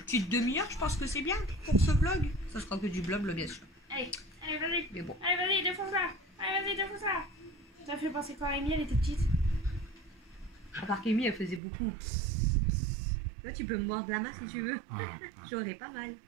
petite demi-heure, je pense que c'est bien pour ce vlog. Ça sera que du blabla bien sûr. Allez, allez, vas-y. Mais bon. Allez, vas-y, défonce-la. Allez, vas-y, défonce-la. Ça fait penser quoi à Amy, elle était petite. À part qu'Amy, elle faisait beaucoup. Toi, tu peux me mordre la main si tu veux. J'aurais pas mal.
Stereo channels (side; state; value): left; drops out; at 11.6 s